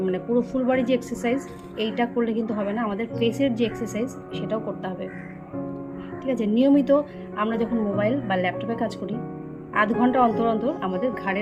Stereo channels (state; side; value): identical; both; correlation 1.00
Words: পুরো ফুল বডি যে এক্সারসাইজ এইটা করলে কিন্তু হবে না, আমাদের ফেসের যে এক্সারসাইজ সেটাও করতে হবে। ঠিক আছে, নিয়মিত আমরা যখন মোবাইল বা ল্যাপটপে কাজ করি, আধ ঘন্টা অন্তর অন্তর আমাদের